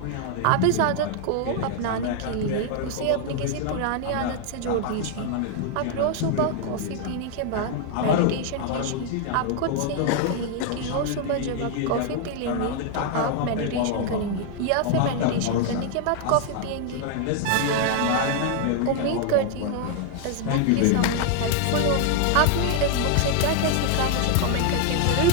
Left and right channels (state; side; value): different; both; correlation 0.00